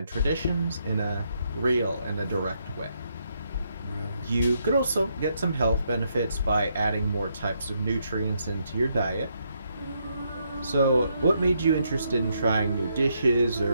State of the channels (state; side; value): inverted; both; correlation -0.77